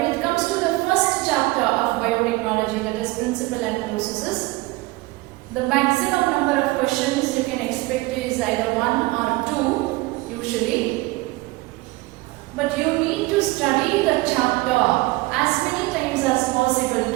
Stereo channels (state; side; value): quieter; left; 21.3 dB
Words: it comes to the first chapter of biotechnology, that is principle and processes, the maximum number of questions you can expect is either 1 or 2 usually. But you need to study the chapter as many times as possible